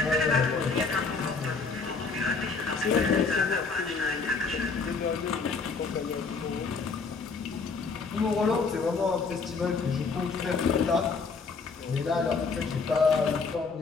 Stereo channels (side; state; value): right; quieter; 4.6 dB